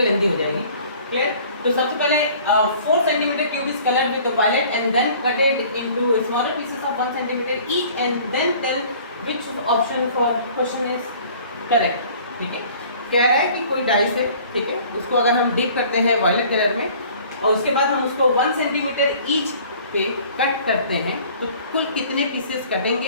लेंदी हो जाएगी। क्लियर? तो सबसे पहले 4 centimetre cube is coloured with violet and then cutted into smaller pieces of 1 centimetre each and then tell which option for question is correct. ठीक है, कह रहा है कि कोई डाइस है, ठीक है, उसको अगर हम डिप करते हैं वायलेट कलर में और उसके बाद हम उसको 1 सेंटीमीटर ईच पे कट करते हैं तो कुल कितने पीसेस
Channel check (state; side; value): inverted; both; correlation -0.50